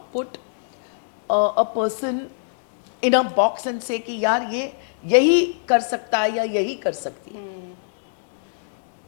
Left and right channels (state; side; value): silent; right; digital silence